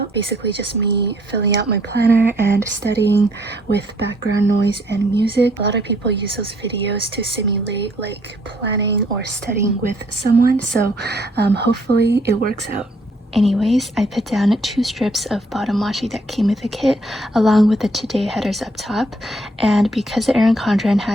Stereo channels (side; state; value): both; normal; correlation 0.66